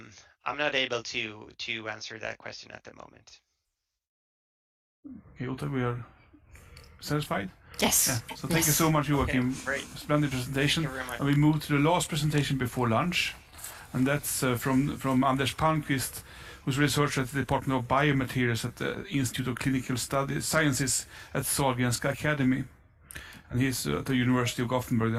not able to answer that question at the moment. Okay, Uta, we are satisfied? Yes. Yeah. So thank you so much, Joachim. Okay, great. Splendid presentation. Thank you very much. And we move to the last presentation before lunch, and that's from Anders Palmqvist, who's a researcher at the Department of Biomaterials at the Institute of Clinical Sciences at Sahlgrenska Academy, and he's at the University of Gothenburg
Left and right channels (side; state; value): both; identical; correlation 1.00